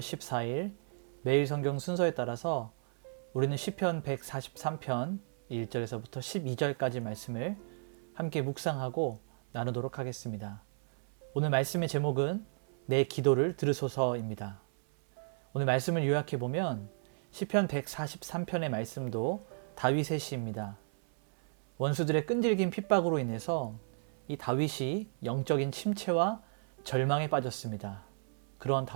14일 매일 성경 순서에 따라서 우리는 시편 143편 1절에서부터 12절까지 말씀을 함께 묵상하고 나누도록 하겠습니다. 오늘 말씀의 제목은 내 기도를 들으소서입니다. 오늘 말씀을 요약해 보면 시편 143편의 말씀도 다윗의 시입니다. 원수들의 끈질긴 핍박으로 인해서 이 다윗이 영적인 침체와 절망에 빠졌습니다. 그런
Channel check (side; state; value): left; silent; 55 dB below the other